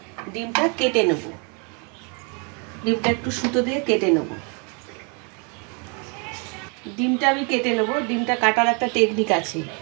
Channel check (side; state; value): left; quieter; 34.9 dB